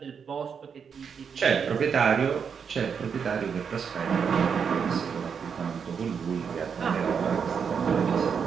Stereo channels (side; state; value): left; quieter; 6.7 dB